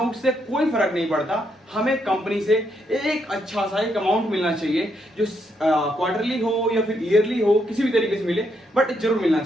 उससे कोई फर्क नहीं पड़ता। हमें कंपनी से एक अच्छा सा एक अमाउंट मिलना चाहिए, जो क्वार्टरली हो या फिर ईयरली हो, किसी भी तरीके से मिले, बट जरूर मिलना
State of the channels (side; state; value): both; normal; correlation 0.77